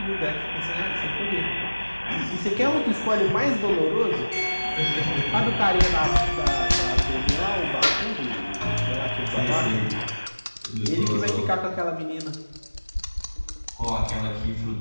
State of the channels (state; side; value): inverted; both; correlation -1.00